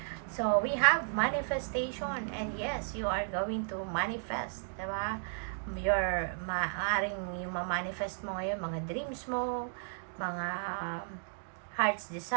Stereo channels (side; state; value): left; silent; digital silence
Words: So, we have manifestation, and yes, you are going to manifest, diba? Maaring yung ma-manifest mo ngayon, mga dreams mo, mga heart's